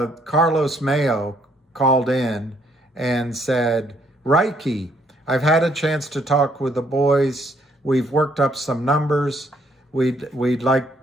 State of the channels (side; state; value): both; normal; correlation 0.68